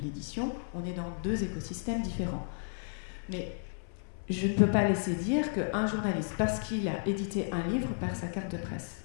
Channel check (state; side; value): silent; right; 56 dB below the other